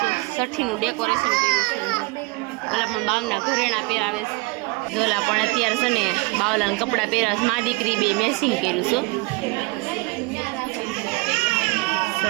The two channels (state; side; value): quieter; left; 26.6 dB